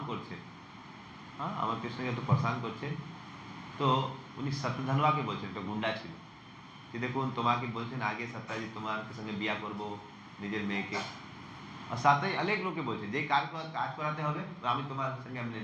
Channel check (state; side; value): identical; both; correlation 1.00